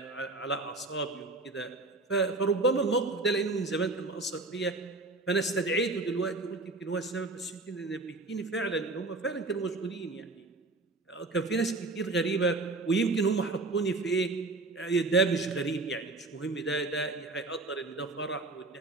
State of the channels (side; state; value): left; quieter; 3.3 dB